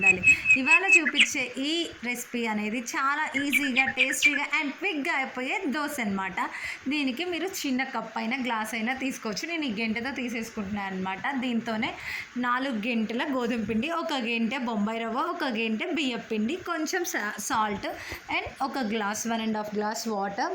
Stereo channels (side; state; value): both; identical; correlation 1.00